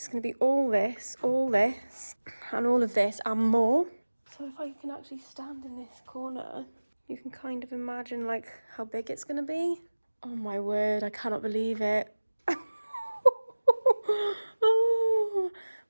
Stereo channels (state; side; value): inverted; both; correlation -1.00